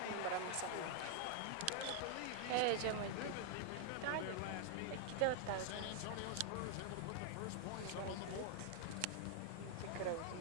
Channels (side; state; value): both; different; correlation 0.00